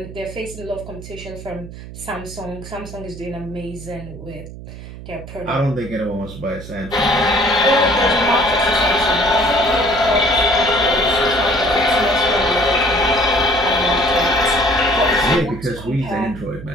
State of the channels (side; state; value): right; noise; hum, 13 dB below the sound